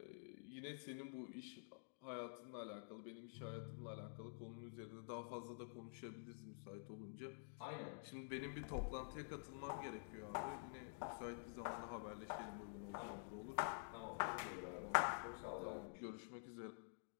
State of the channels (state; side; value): silent; right; digital silence